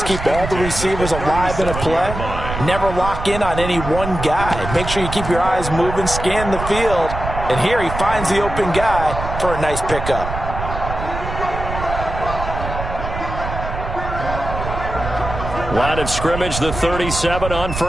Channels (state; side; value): noise; right; rumble, 6 dB below the sound